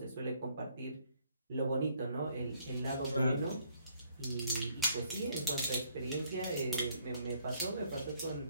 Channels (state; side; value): inverted; both; correlation -0.66